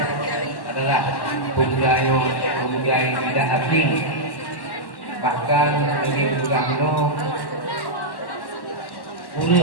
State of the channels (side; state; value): right; late; 1.1 ms